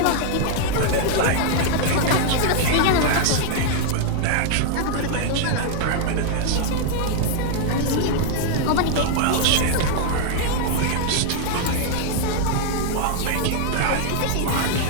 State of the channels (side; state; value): both; different; correlation 0.00